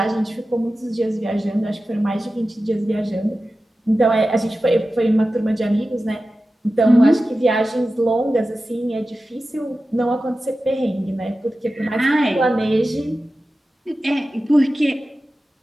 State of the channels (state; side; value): normal; both; correlation 0.94